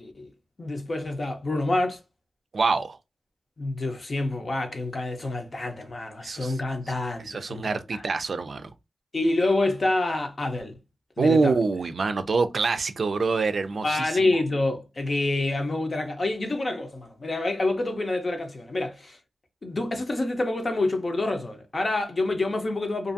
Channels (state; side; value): normal; both; correlation 0.90